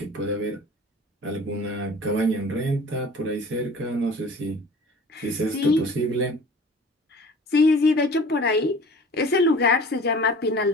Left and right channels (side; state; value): both; normal; correlation 0.44